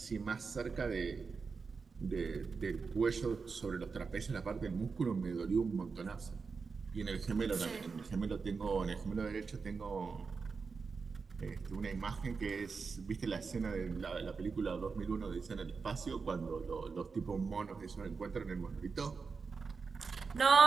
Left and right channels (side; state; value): left; quieter; 4.9 dB